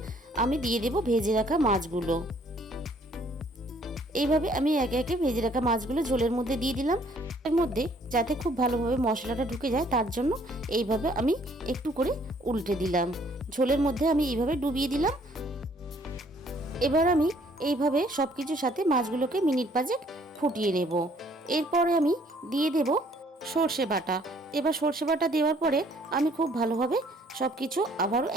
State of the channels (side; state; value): both; normal; correlation 0.62